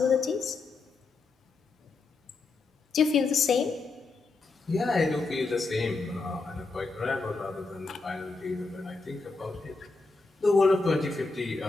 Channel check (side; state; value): right; quieter; 3.8 dB